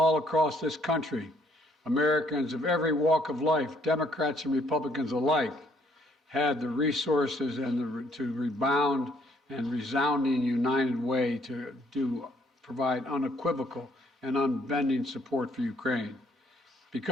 across this country, Americans of every walk of life, Democrats and Republicans alike, had the resources and to rebound and resounding united way to provide unequivocal and unbending support for Ukraine.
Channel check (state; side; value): normal; both; correlation 0.67